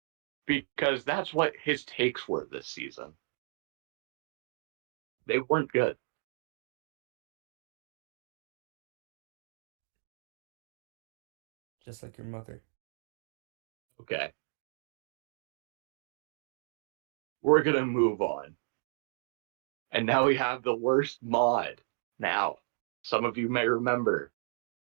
because that's what his takes were this season. They weren't good. Just like your mother. Okay. We're going to move on. And now we have the worst mod. Now, some of you may remember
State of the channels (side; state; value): left; silent; digital silence